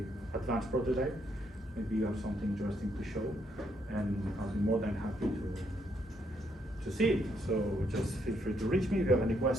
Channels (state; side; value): normal; both; correlation 0.74